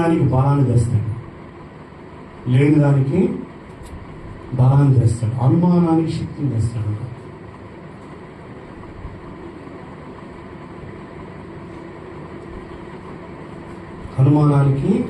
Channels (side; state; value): both; identical; correlation 1.00